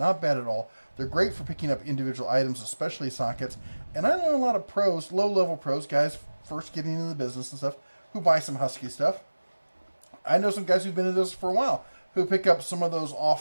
bad at all. They're great for picking up individual items, especially sockets. And I know a lot of pros, low-level pros, guys first getting into the business and stuff, who buy some Husky stuff. I know some guys who've been in this for a while who pick up some of those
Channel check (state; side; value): inverted; both; correlation -1.00